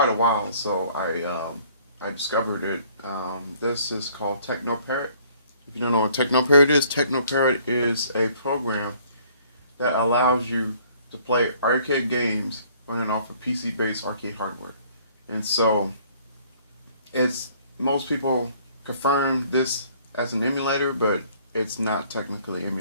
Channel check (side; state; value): both; inverted; correlation -0.59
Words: a while. So I discovered it. This is called TechnoParrot. If you don't know what TechnoParrot is a program that allows you to play arcade games running off of PC-based arcade hardware. And so it's most people confirm this as an emulator, but it's not technically an